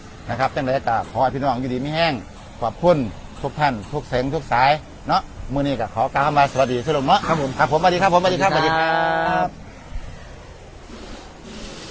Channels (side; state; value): both; identical; correlation 1.00